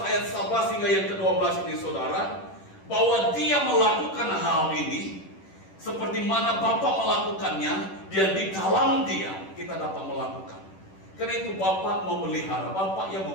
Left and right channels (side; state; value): right; late; 10 ms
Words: ayat 11 hingga yang ke-12 ini, saudara, bahwa dia melakukan hal ini seperti mana Bapa melakukannya, dan di dalam dia kita dapat melakukan. Karena itu Bapa memelihara, Bapa yang